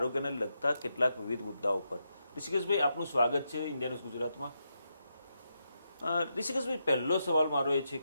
લગતા કેટલાક વિવિધ મુદ્દાઓ પર. ઋષિકેશભાઈ, આપનું સ્વાગત છે ઇન્ડિયા ન્યૂઝ ગુજરાતમાં. ઋષિકેશભાઈ, પહેલો સવાલ મારો એ છે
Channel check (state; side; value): inverted; both; correlation -0.84